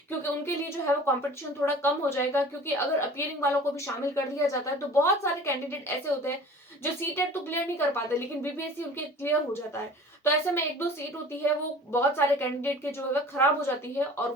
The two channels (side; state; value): both; normal; correlation 0.43